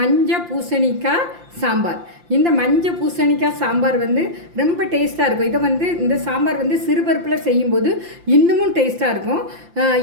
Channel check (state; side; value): late; left; 5.8 ms